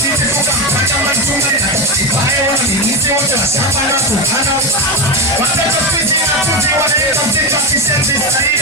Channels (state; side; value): normal; both; correlation 0.15